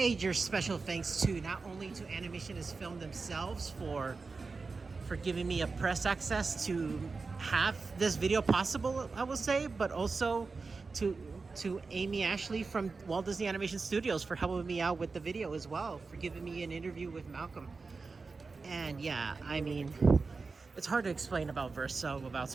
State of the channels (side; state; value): left; quieter; 4.3 dB